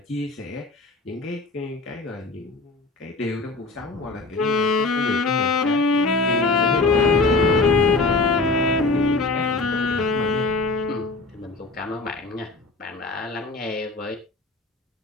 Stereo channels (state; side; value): quieter; right; 3.5 dB